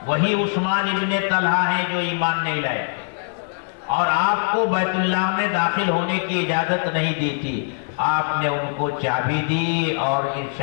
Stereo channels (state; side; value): silent; right; digital silence